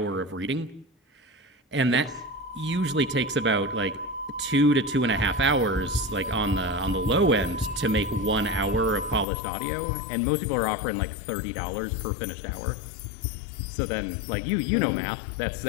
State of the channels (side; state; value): right; drops out; at 9.2 s